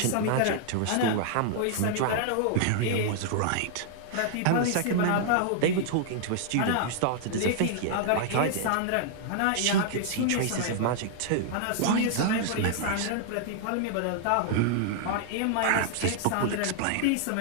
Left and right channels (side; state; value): both; different; correlation -0.01